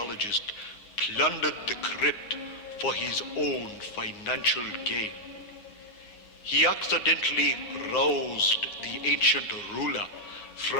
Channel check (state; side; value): late; right; 9.7 ms